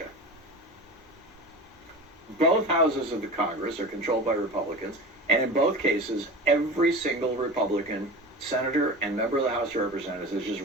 Both houses of the Congress are controlled by Republicans, and in both cases, every single Republican senator and member of the House of Representatives has just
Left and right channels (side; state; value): both; normal; correlation 0.31